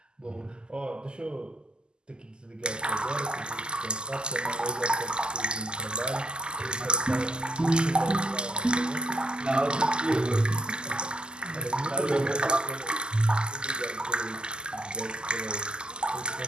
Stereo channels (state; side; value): late; left; 0.047 ms